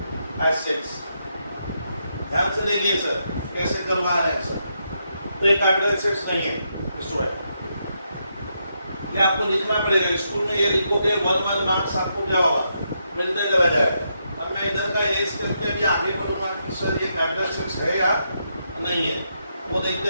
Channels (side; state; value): both; inverted; correlation -0.81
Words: एसेट्स। ध्यान से देखिए सर कैसे करवा रहे हैं सर, तो ये कैपिटल एसेट्स नहीं है स्टूडेंट। ये आपको लिखना पड़ेगा, स्कूल में ये लिखोगे 1 मार्क्स आपको क्या होगा, मिलते चला जाएगा। अब मैं इधर का एज करके अभी आगे बढ़ूंगा कि सर ये कैपिटल एसेट्स है या नहीं है, वो